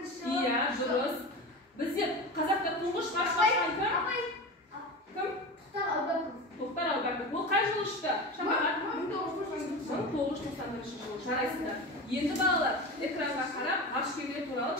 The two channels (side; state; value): both; normal; correlation 0.28